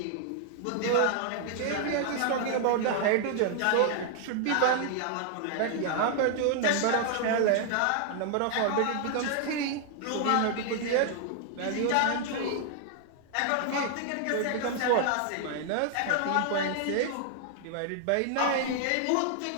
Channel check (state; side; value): different; both; correlation 0.00